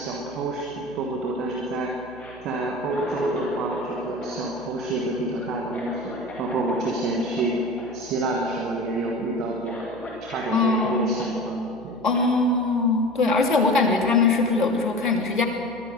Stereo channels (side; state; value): right; noise; hum, 22 dB below the sound